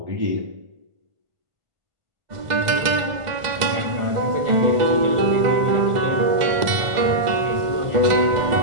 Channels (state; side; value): late; left; 1.5 ms